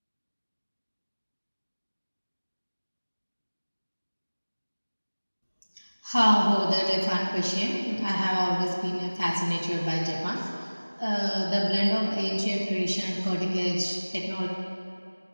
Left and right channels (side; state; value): both; inverted; correlation -1.00